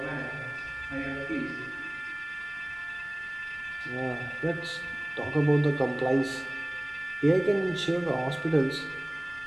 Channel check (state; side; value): noise; left; rumble, 23 dB below the sound